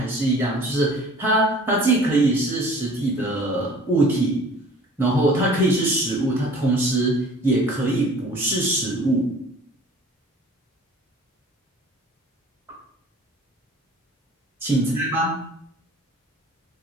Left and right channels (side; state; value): both; normal; correlation 0.48